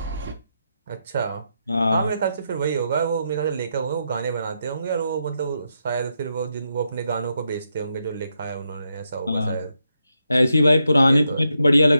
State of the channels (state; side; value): inverted; both; correlation -0.83